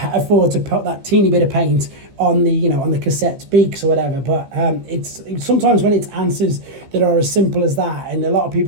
to put that teeny bit of paint on the, you know, on the cassette beaks or whatever. But it's sometimes when it's answers that are as simple as that, and a lot of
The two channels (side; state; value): left; late; 15 ms